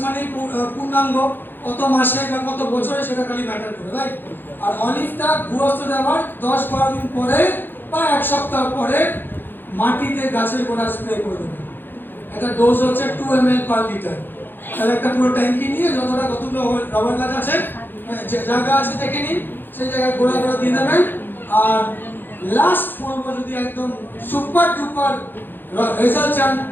মানে পূর্ণাঙ্গ, কত মাসে বা কত বছরে সেটা খালি ম্যাটার করে, রাইট? আর অলিভটা ভুয়স্ত দেওয়ার 10-12 দিন পরে বা 1 সপ্তাহ পরে মাটিতে গাছের গোড়া স্প্রে করে দেবেন। এটা ডোজ হচ্ছে 2 ml per লিটার। তাহলে একটা পুরো ট্যাঙ্কি নিয়ে কতগুলো রাবার গাছ আছে, যে জায়গা আছে দেখে নিন, সেই জায়গায় গোড়া গোড়া দিয়ে দেবেন। আর লাস্ট বলবো, যদি একদম সুপার ডুপার রেজাল্ট চান,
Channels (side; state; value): right; late; 0.096 ms